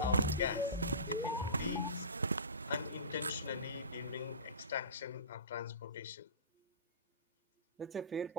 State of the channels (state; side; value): inverted; both; correlation -0.33